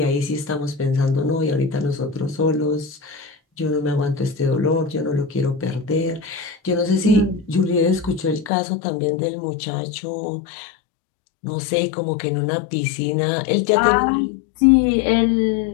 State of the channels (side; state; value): right; drops out; at 8.5 s